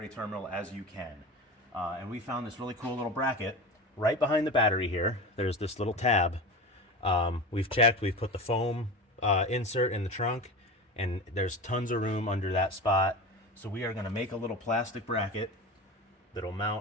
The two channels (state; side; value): normal; both; correlation 0.28